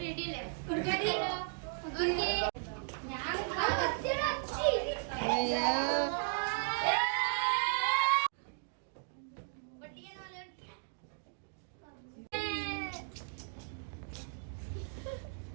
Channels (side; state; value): left; silent; digital silence